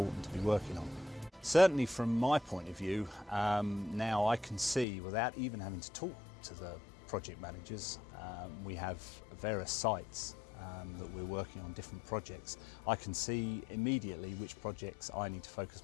to be working on. Certainly from my point of view, now I can see, without even having to talk to the project managers, we have various sites that we're working on different projects. I can see immediately which projects I need to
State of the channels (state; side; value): drops out; right; at 4.9 s